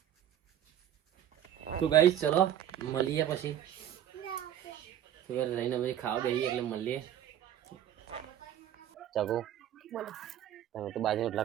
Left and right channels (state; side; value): quieter; left; 10.9 dB